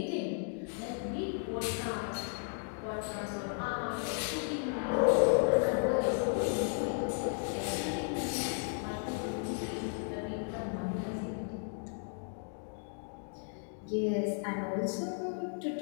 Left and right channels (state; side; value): silent; right; 55 dB below the other